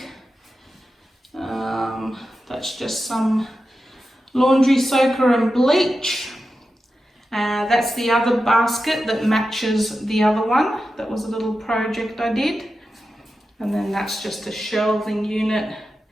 That's just some laundry soaker and bleach. That's the other basket that matches the other one. That was a little project I did. And then that's just a shelving unit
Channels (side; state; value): both; normal; correlation 0.91